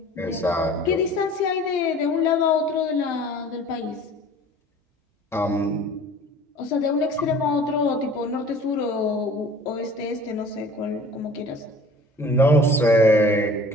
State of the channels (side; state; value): both; normal; correlation 0.47